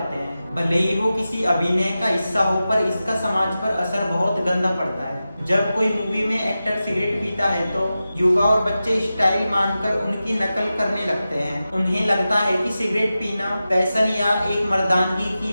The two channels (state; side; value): inverted; both; correlation -0.93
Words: हैं। भले ही वो किसी अभिनय का हिस्सा हो, पर इसका समाज पर असर बहुत गंदा पड़ता है। जब कोई मूवी में एक्टर सिगरेट पीता है तो युवा और बच्चे स्टाइल मानकर उनकी नकल करने लगते हैं। उन्हें लगता है कि सिगरेट पीना फैशन या एक मर्दानगी की